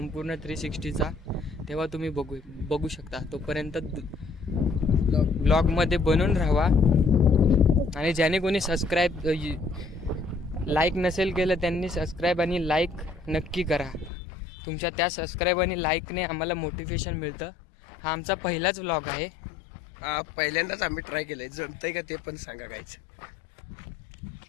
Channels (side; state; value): right; drops out; at 14.1 s